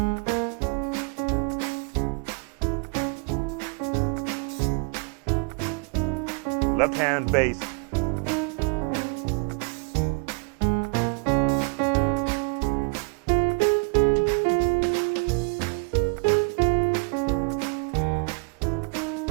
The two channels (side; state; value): left; quieter; 35.3 dB